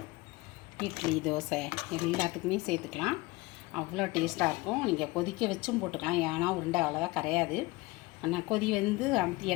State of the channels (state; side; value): quieter; right; 22.0 dB